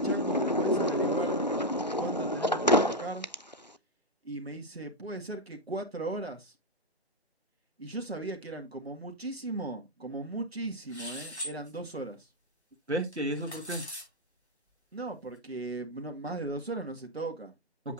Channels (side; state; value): both; normal; correlation 0.02